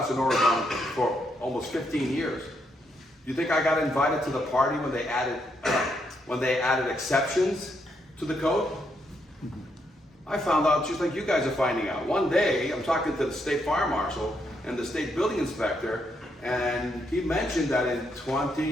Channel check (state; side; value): normal; both; correlation 0.77